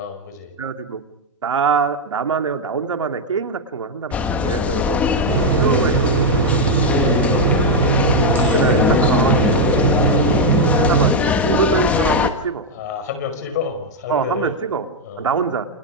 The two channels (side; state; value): both; normal; correlation 0.00